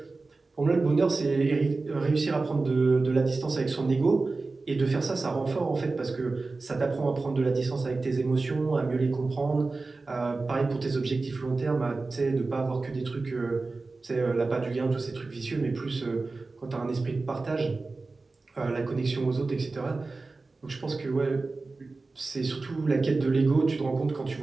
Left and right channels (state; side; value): quieter; left; 3.7 dB